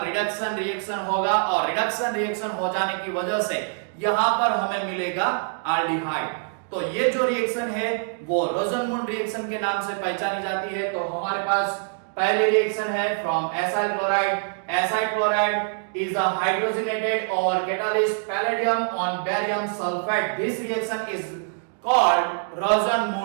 रिडक्शन रिएक्शन होगा और रिडक्शन रिएक्शन हो जाने की वजह से यहां पर हमें मिलेगा आल्डिहाइड। तो ये जो रिएक्शन है वो रोजनमुंड रिएक्शन के नाम से पहचानी जाती है। तो हमारे पास पहले रिएक्शन है from acyl chloride. Acyl chloride is a hydrogenated over catalyst palladium on barium sulphate. This reaction is called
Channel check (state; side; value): silent; left; digital silence